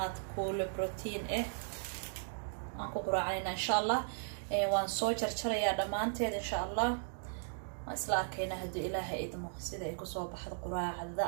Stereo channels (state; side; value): silent; left; digital silence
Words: كل بروتين انكو قراعينا ان شاء الله وان سو جرجريا دمانتيد ان شاء الله اسلا كينا هدو الهي ادمو سيدا ايكو سو بخد قراعدا